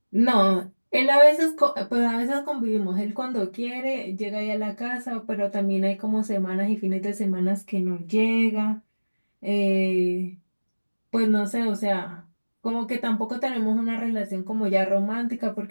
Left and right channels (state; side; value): inverted; both; correlation -1.00